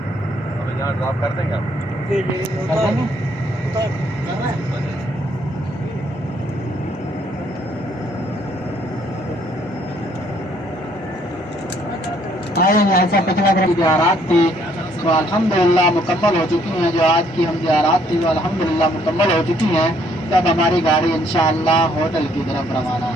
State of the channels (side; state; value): both; normal; correlation 0.66